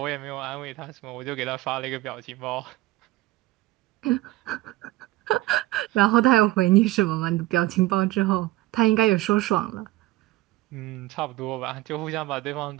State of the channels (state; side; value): quieter; left; 17.8 dB